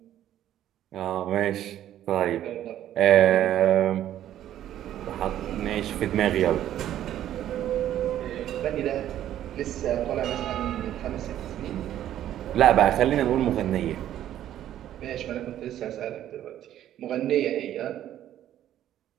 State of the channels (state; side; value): quieter; left; 11.8 dB